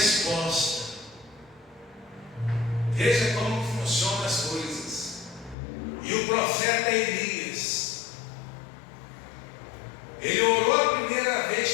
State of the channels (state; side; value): drops out; right; at 5.6 s